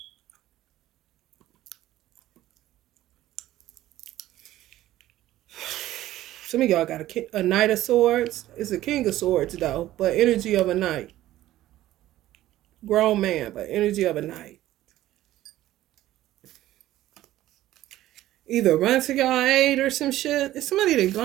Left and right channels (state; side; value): quieter; left; 14.5 dB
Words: Some of y'all got a Knight of Swords. It's a King of Swords, though, but energy of a knight. Grown man, but energy of a knight. Either run to y'all aid or some shit. It's somebody they